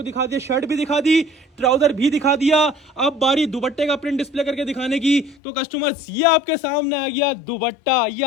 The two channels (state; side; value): drops out; right; at 5.4 s